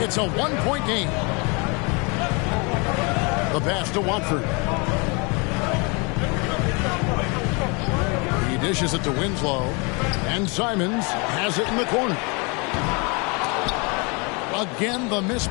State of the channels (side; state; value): right; quieter; 31.0 dB